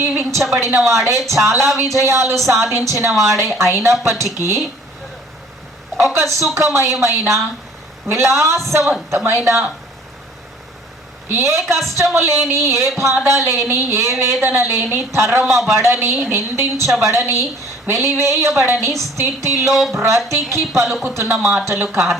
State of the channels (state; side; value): normal; both; correlation 0.53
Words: వాడే, చాలా విజయాలు సాధించిన వాడే అయినప్పటికీ ఒక సుఖమయమైన, విలాసవంతమైన, ఏ కష్టము లేని, ఏ బాధ లేని, ఏ వేదన లేని, తరమబడని, నిందించబడని, వెలివేయబడని స్థితిలో బ్రతికి పలుకుతున్న మాటలు